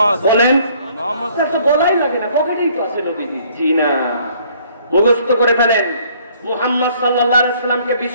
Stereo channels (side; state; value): both; inverted; correlation -0.61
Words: বলেন? তো বলাই লাগে না, পকেটেই তো আছে নবী। জি না, মুখস্থ করে ফেলেন। মুহাম্মদ সাল্লাল্লাহু আলাইহি ওয়াসাল্লামকে